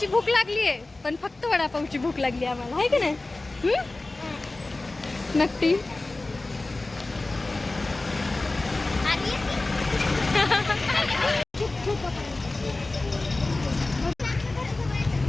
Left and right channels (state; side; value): quieter; right; 3.1 dB